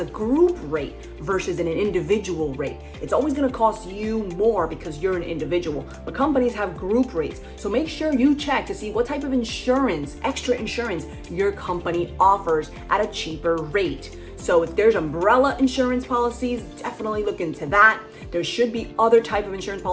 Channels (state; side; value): identical; both; correlation 1.00